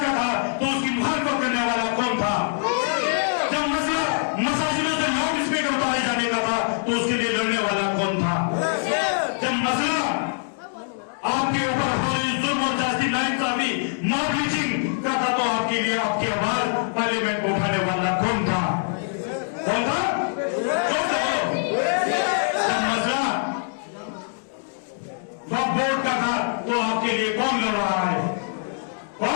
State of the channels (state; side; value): silent; right; digital silence